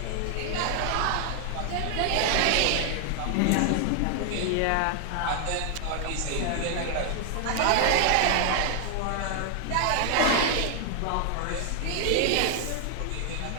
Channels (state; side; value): different; both; correlation 0.00